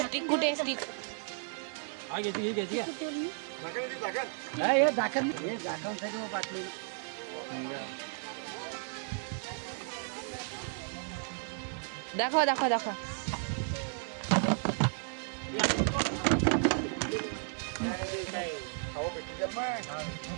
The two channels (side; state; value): left; silent; 55 dB below the other